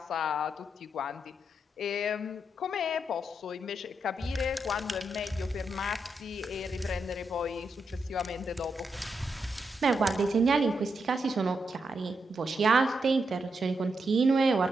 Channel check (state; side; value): normal; both; correlation 0.83